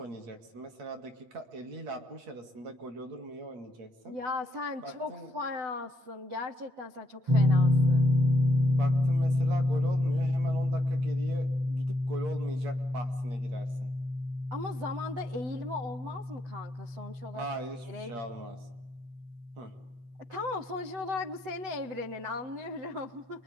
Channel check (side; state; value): left; late; 8.0 ms